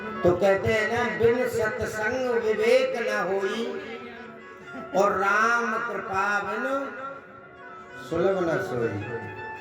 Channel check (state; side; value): identical; both; correlation 1.00